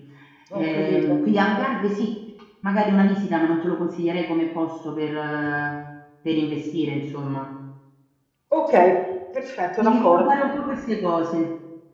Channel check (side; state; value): both; identical; correlation 1.00